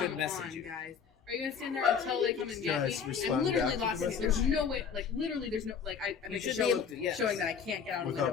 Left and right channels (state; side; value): quieter; right; 6.7 dB